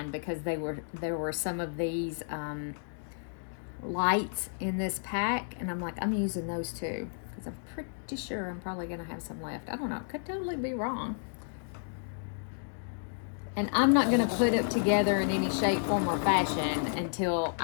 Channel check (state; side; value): silent; right; digital silence